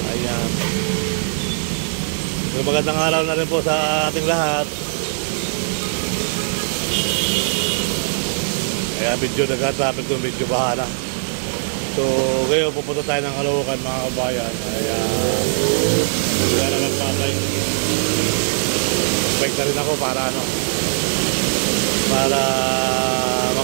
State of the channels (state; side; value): silent; left; 59 dB below the other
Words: Ayan. So, magandang araw na rin po sa ating lahat. Kaya medyo nag-traffic doon, medyo baha na. So ngayon pupunta tayo ng Caloocan, mga kabayan. Kaya wala na magpapay. Magbike na rin ako para para